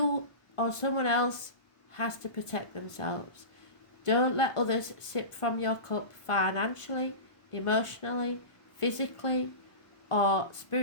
or someone else has to protect themselves. Don't let others sip from your cup financially, emotionally, physically or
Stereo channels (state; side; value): late; right; 1.5 ms